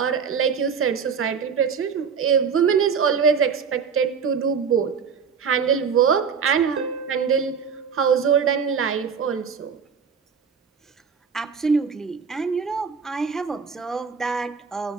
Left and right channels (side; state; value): left; quieter; 6.3 dB